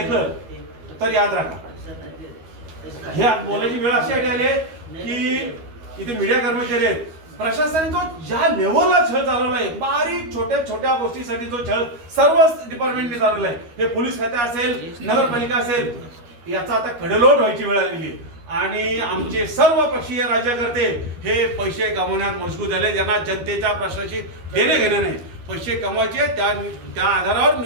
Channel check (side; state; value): left; late; 13 ms